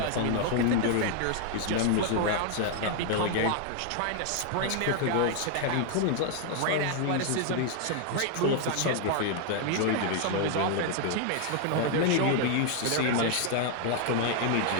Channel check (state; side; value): different; both; correlation 0.00